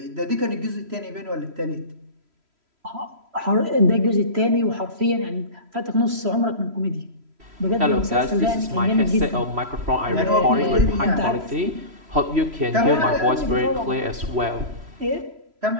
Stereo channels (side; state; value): left; late; 3.0 ms